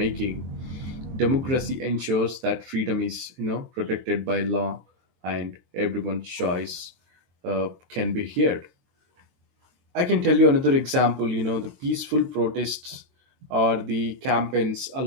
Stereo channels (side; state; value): left; late; 23 ms